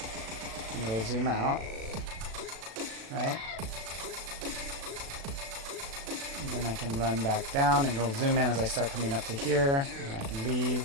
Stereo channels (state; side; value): late; left; 36 ms